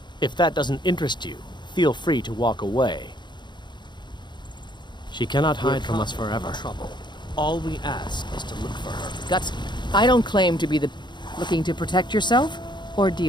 If that doesn't interest you, feel free to walk away. She cannot hide from us forever. All we ask is to look for her. Guts, I don't claim to be the... Looking to protect yourself or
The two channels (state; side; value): late; right; 0.22 ms